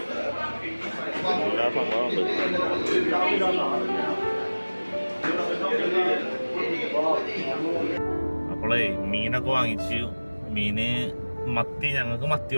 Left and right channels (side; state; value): both; inverted; correlation -1.00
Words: എല്ലാ സംഭവമുണ്ട്. അപ്പോളേ മീനൊക്കെ വാങ്ങിച്ചു. മീന് മത്തി, ഞങ്ങൾക്ക് മത്തി